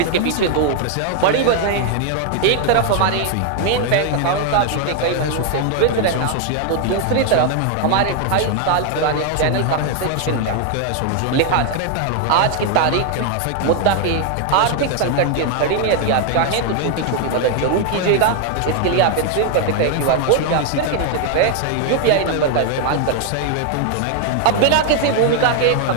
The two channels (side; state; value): both; different; correlation 0.00